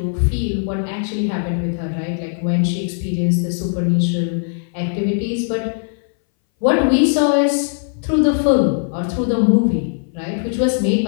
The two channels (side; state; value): right; silent; 61 dB below the other